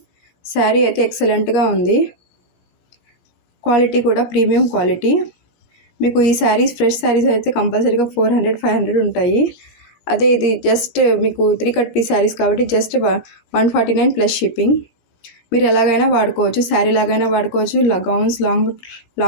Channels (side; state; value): right; late; 17 ms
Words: శారీ అయితే ఎక్సలెంట్గా ఉంది, క్వాలిటీ కూడా ప్రీమియం క్వాలిటీ. మీకు ఈ శారీస్ ఫ్రెష్ శారీస్ అయితే కంపల్సరీగా 400-500 ఉంటాయి. అదే ఇది జస్ట్ మీకు 3 కట్ పీస్ శారీస్ కాబట్టి జస్ట్ 149 ప్లస్ షిప్పింగ్. మీరు ఎలాగైనా వాడుకోవచ్చు, శారీ లాగైనా వాడుకోవచ్చు, గౌన్స్,